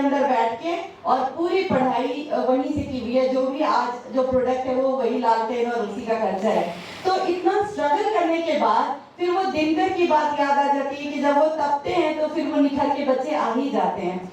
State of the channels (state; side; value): identical; both; correlation 1.00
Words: बैठ के और पूरी पढ़ाई वहीं से की हुई है। जो भी आज जो प्रोडक्ट है वो वही लालटेन और उसी का खर्चा है। तो इतना स्ट्रगल करने के बाद फिर वो दिन भर की बात याद आ जाती है कि जब वो तपते हैं तो फिर वो निखर के बच्चे आ ही जाते हैं।